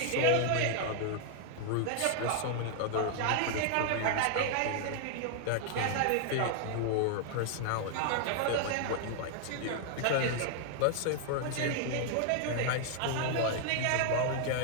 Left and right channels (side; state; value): both; different; correlation 0.00